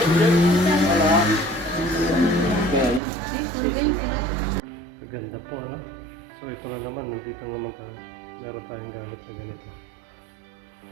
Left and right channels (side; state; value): left; drops out; at 3.0 s